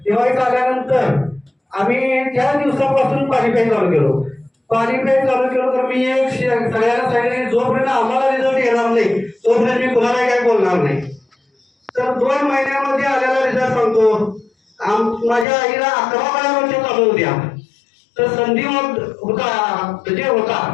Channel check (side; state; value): right; drops out; at 15.5 s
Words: दिवाळी झाल्यानंतर आम्ही त्या दिवसापासून पाणी प्यायला चालू केलो. पाणी प्यायला चालू केलं तर मी एक सगळ्यांना सांगितलं जोपर्यंत आम्हाला रिझल्ट येणार नाही तोपर्यंत मी कुणाला काय बोलणार नाही. तर 2 महिन्यामध्ये आलेला रिझल्ट सांगतो. माझ्या आईला 11 वर्ष चालू होत्या. तर संधी होता जे होता